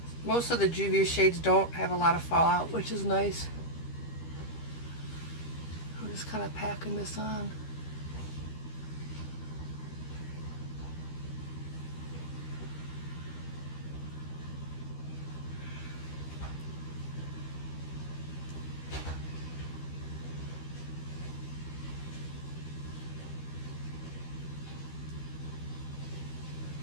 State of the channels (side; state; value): right; late; 13 ms